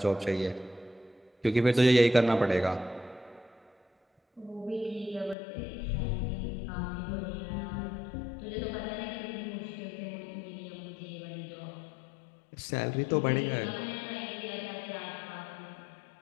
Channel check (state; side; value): drops out; right; at 5.4 s